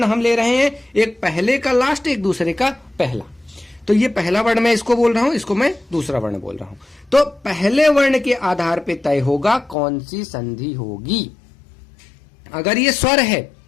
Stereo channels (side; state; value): right; drops out; at 9.8 s